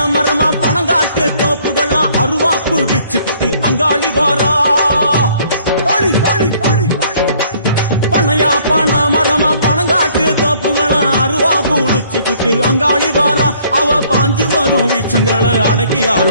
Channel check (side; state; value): both; inverted; correlation -0.60